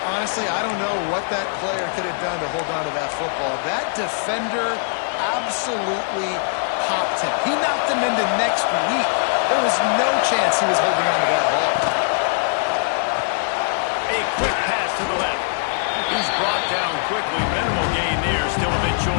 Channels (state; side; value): silent; right; digital silence